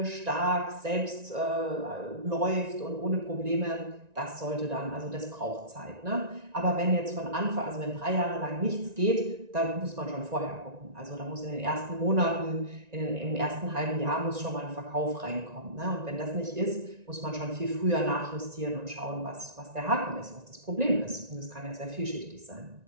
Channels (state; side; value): late; left; 1.9 ms